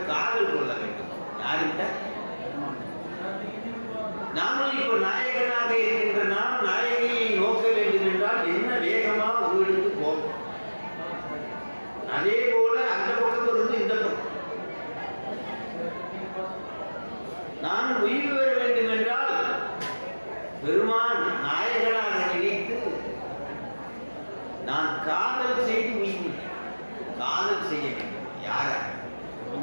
காதல் கொள்ள வேண்டும். யாருகிட்ட? நாமும் இப்ப நாயகனாக இருக்கின்ற நாம் நாயகியை நோக்க வேண்டும் என்றால் என்ன வேகமா ஒரு எடுத்து போகும். அதே போல அந்த பக்கம் இருந்து இந்த பக்கம் நான் உயிர் பெற வேண்டும் என்றால் பெருமான் நாயகனாக நினைத்து நான் காதல் செய்து உயிர் காதல் செய்ய வேண்டும். யார?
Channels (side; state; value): both; inverted; correlation -1.00